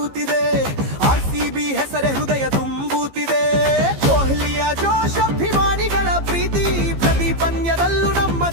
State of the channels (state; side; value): late; left; 15 ms